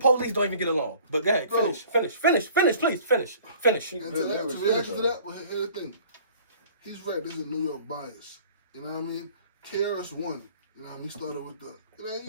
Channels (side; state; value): both; inverted; correlation -0.50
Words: don't even get along. But go ahead, finish, please, finish. And to reaction to that, well, here's the thing. He's right, this is New York bias. You know what I mean? KRS-One, you know what I mean? He started with